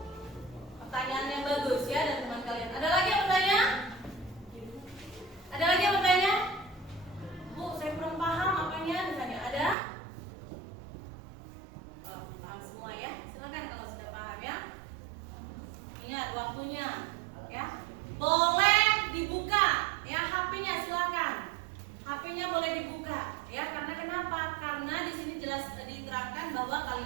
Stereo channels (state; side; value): drops out; left; at 9.8 s